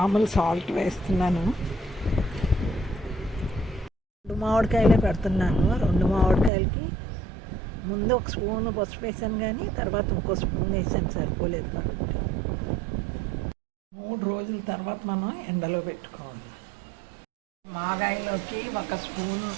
సాల్ట్ వేస్తున్నాను. 2 మామిడికాయలే పెడుతున్నాను. 2 మామిడికాయలకి ముందు ఒక స్పూన్ పసుపు వేసాను, కానీ తర్వాత ఇంకో స్పూన్ వేసాను, సరిపోలేదు కాబట్టి 3 రోజుల తర్వాత మనం ఎండలో పెట్టుకోవాలి. మాగాయలోకి 1 స్పూను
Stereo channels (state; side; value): drops out; left; at 6.5 s